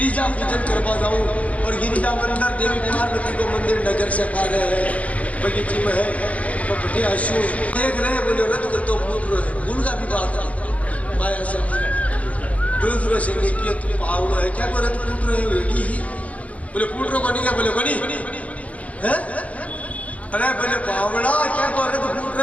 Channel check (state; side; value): late; right; 0.067 ms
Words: पूजन करवा जाऊं। और गिरिजा मंदिर देवी पार्वती को मंदिर नगर से पा रहे हैं, बगीचे में है। तो बटे आशु देख रहे बोले रथ कर तो फूट रहे भूल का भी बात है माया से दूसरों से नहीं किया। तू पावड़ो है क्या को रथ फूट रहे हो एडी ही बोले फूट रो कोनी क्या बोले कोनी है। अरे बोले बावड़ा क्या को रथ फूट